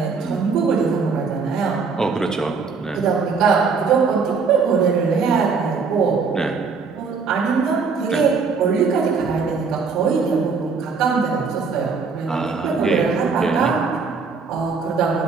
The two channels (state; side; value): quieter; left; 5.0 dB